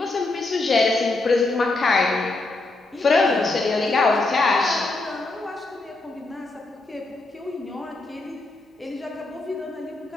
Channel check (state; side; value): quieter; right; 3.1 dB